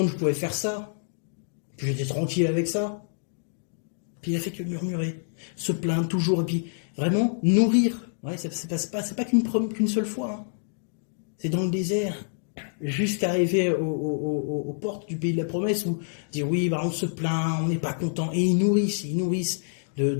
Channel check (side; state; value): right; silent; digital silence